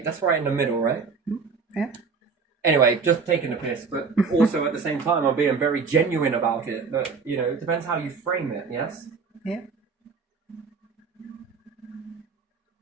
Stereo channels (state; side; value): quieter; left; 5.1 dB